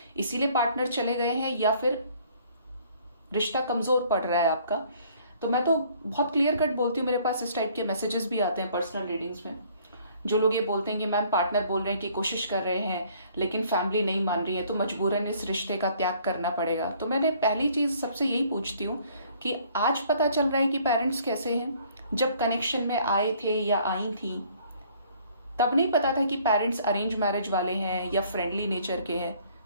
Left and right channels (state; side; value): inverted; both; correlation -0.59